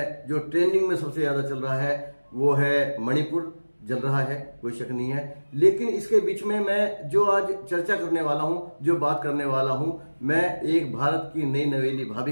जो ट्रेंडिंग में सबसे ज्यादा चल रहा है वो है मणिपुर जल रहा है, कोई शक नहीं है। लेकिन इसके बीच में मैं जो आज चर्चा करने वाला हूं, जो बात करने वाला हूं, मैं एक भारत की नई नवेली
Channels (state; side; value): inverted; both; correlation -1.00